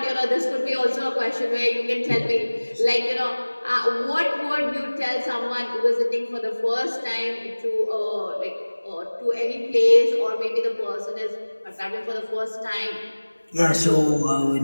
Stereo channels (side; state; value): both; inverted; correlation -1.00